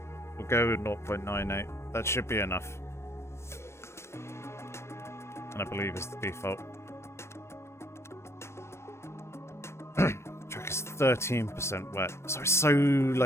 We'll go 0.98. That should be enough. And I believe it's the default. Track is 13% wet. So it's so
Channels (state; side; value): late; right; 0.13 ms